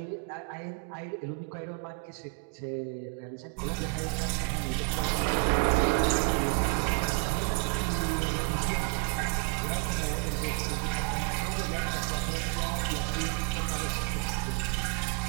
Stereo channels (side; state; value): left; quieter; 34.2 dB